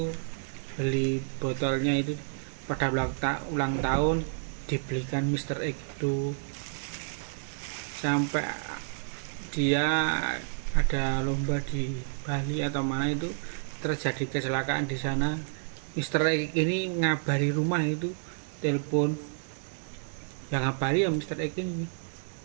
beli botolnya itu pada ulang tahun dibelikan Mr. X itu. Sampai dia ada lomba di Bali atau mana itu, terjadi kecelakaan di sana, Mr. X ini ngabari rumah itu, telepon, yang ngabari ya Mr. X ini.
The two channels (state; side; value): silent; left; digital silence